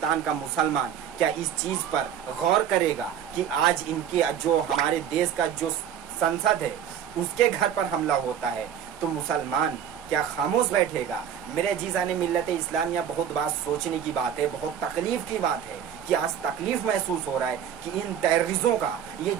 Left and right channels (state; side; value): quieter; left; 9.1 dB